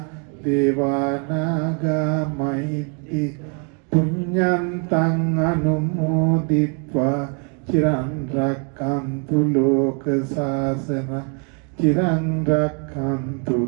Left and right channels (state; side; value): quieter; left; 37.9 dB